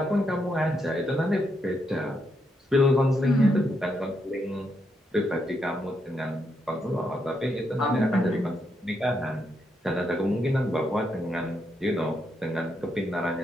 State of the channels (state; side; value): normal; both; correlation 0.79